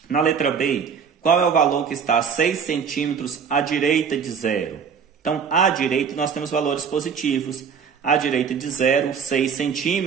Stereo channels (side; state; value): left; quieter; 6.6 dB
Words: Na letra B, qual é o valor que está a 6 centímetros à direita de zero? Então, à direita nós temos valores positivos. À direita de zero, 6